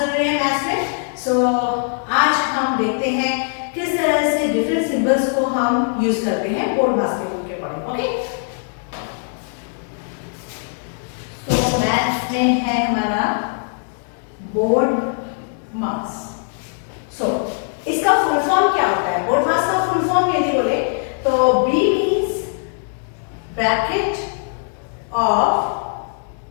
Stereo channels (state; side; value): silent; right; 61 dB below the other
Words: जरूरी है मैथ्स में। आज हम देखते हैं किस तरह से डिफरेंट सिंबल्स को हम यूज करते हैं बोर्ड मास के रूल के अकॉर्डिंग। ओके, तो मैथ्स में है हमारा बोर्ड मास। इसका फुल फॉर्म क्या होता है? बोर्ड मास का फुल फॉर्म यदि बोले तो B means bracket of